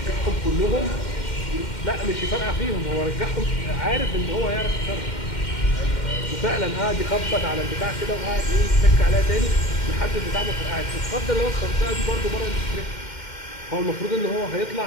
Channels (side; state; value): right; late; 2.1 ms